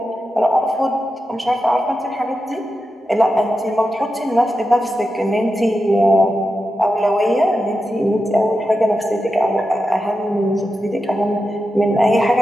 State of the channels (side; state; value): both; normal; correlation 0.90